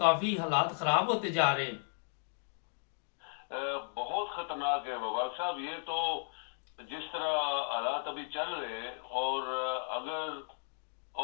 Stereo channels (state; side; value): silent; right; 54 dB below the other